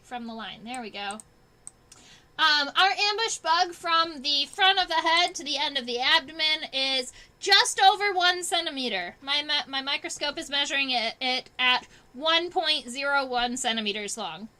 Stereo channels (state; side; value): identical; both; correlation 1.00